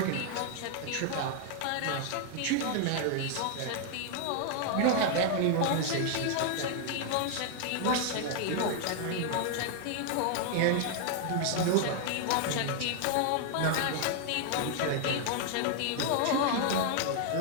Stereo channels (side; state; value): both; different; correlation 0.00